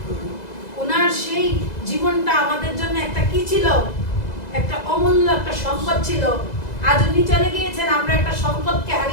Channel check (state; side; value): late; right; 2.0 ms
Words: ওনার সেই জীবনটা আমাদের জন্য একটা কি ছিল, একটা অমূল্য একটা সম্পদ ছিল। আজ উনি চলে গিয়েছেন, আমরা একটা সম্পদকে